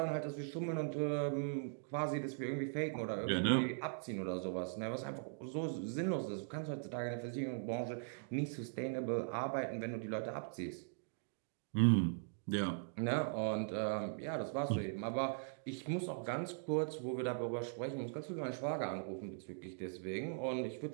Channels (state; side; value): silent; left; digital silence